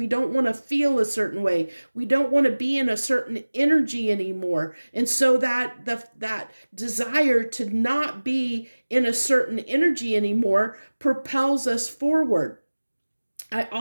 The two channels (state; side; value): inverted; both; correlation -1.00